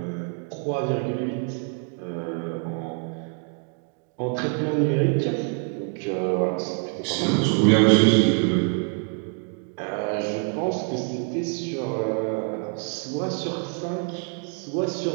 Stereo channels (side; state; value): left; quieter; 38.9 dB